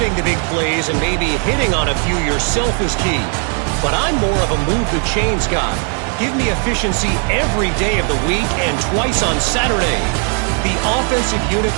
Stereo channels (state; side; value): quieter; left; 38.6 dB